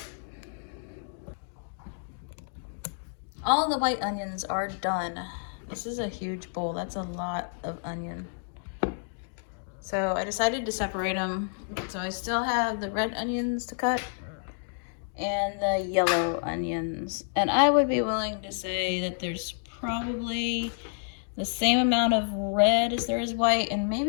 All the white onions are done. This is a huge bowl. That's a lot of onion. So I decided to separate them. So I still have the red onions to cut and the yellow onions. And I would be willing to say that there's probably the same amount of red as there is white, and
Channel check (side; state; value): right; silent; digital silence